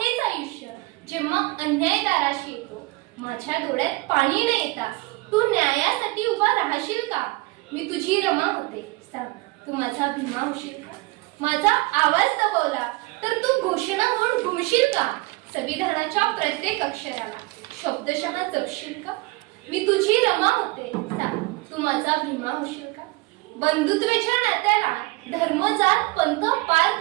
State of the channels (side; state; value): left; quieter; 22.3 dB